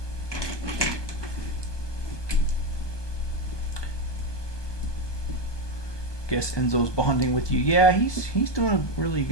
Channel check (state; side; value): late; right; 1.2 ms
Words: Guess Enzo's bonding with you. Yeah, he's doing really